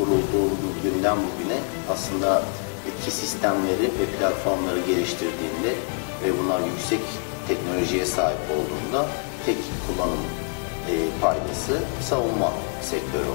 günden bugüne aslında etki sistemleri ve platformları geliştirdiğinde ve bunlar yüksek teknolojiye sahip olduğunda tek kullanım paydası savunma sektörü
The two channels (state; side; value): quieter; right; 38.4 dB